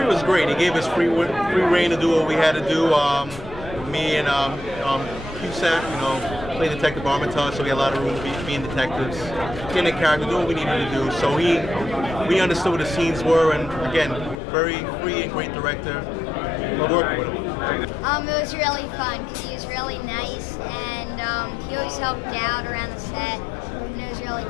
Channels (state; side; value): drops out; right; at 14.4 s